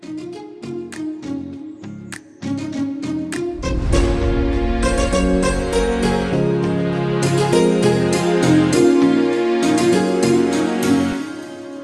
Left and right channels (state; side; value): identical; both; correlation 1.00